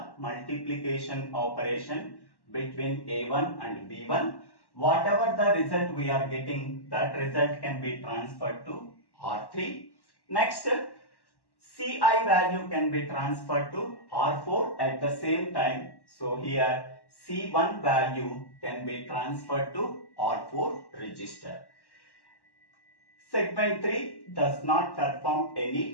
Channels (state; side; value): late; right; 1.1 ms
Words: multiplication operation between A1 and B1. Whatever the result we are getting, that result can be transferred to R3. Next, CI value can be transferred to R4 at the same time. So here C1 value can be transferred to R4 register. Segment 3 does not perform